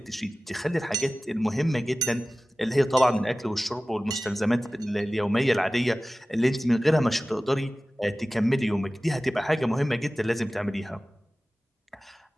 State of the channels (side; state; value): both; normal; correlation 0.97